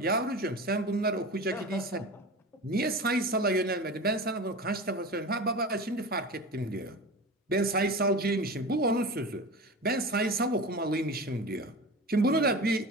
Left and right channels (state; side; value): normal; both; correlation 0.31